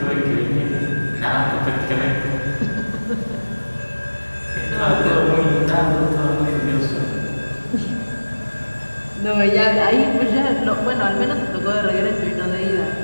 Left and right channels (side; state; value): both; inverted; correlation -1.00